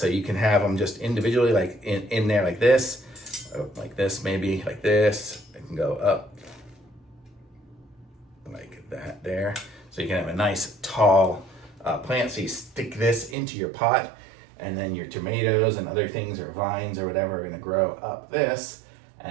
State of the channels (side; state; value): left; drops out; at 13.4 s